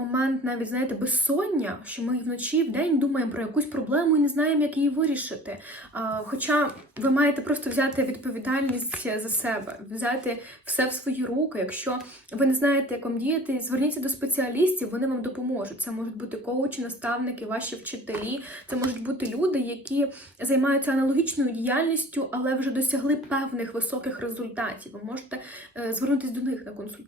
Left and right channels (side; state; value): both; normal; correlation 0.45